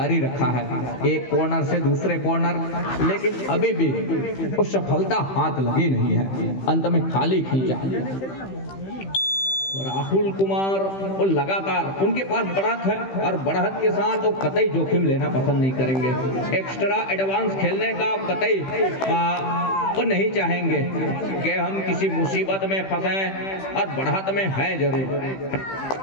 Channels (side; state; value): right; late; 15 ms